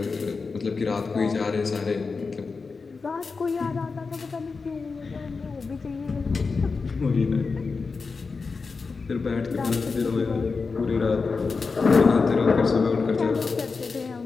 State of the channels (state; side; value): quieter; right; 4.6 dB